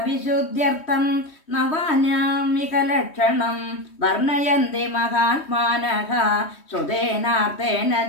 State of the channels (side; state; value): right; late; 3.2 ms